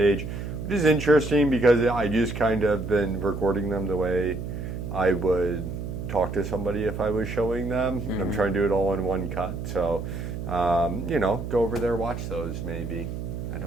which is interesting because I just kind of been recording them the way I would talk to somebody if I was showing them. Mm-hmm. I'm trying to do it all in one cut. So, go over there, watch those maybe. I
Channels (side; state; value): right; noise; hum, 6 dB below the sound